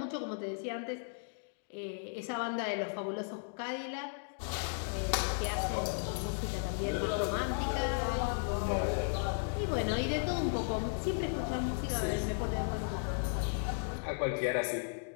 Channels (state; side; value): silent; right; digital silence